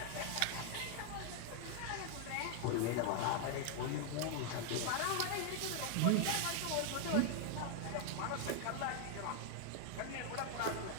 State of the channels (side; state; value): both; different; correlation 0.00